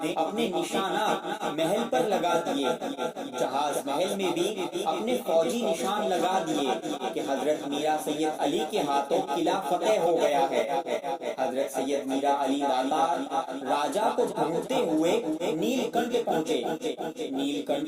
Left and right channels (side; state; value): both; identical; correlation 1.00